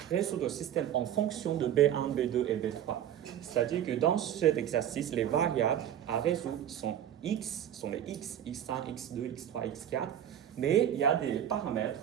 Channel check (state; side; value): quieter; left; 10.4 dB